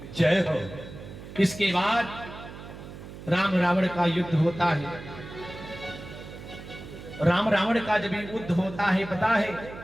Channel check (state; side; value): noise; right; hum, 13 dB below the sound